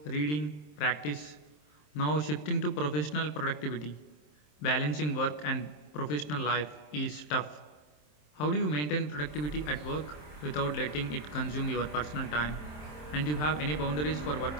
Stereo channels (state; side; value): late; right; 27 ms